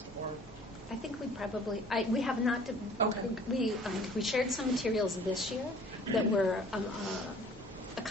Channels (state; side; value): normal; both; correlation 0.51